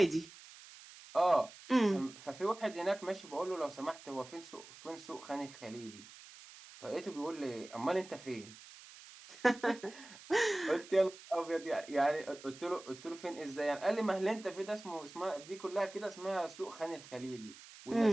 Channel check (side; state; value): right; noise; hiss, 18 dB below the sound